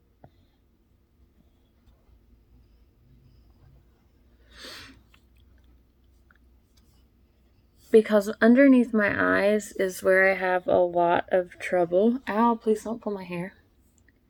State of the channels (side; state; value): both; identical; correlation 1.00